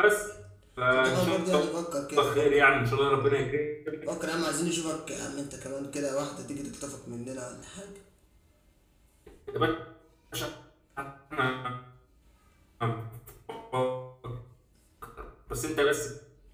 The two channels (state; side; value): identical; both; correlation 1.00